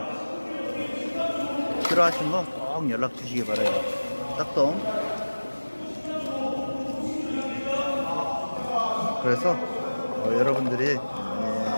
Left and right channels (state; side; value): inverted; both; correlation -1.00